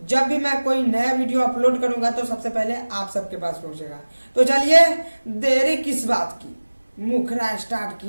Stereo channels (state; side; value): inverted; both; correlation -1.00